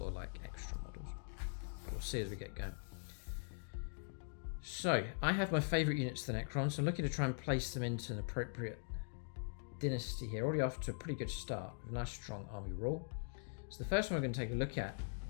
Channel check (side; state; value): right; silent; digital silence